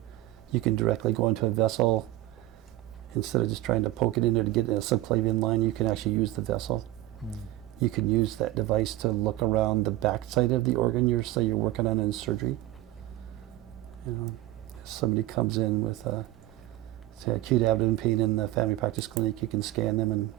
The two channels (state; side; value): quieter; left; 16.4 dB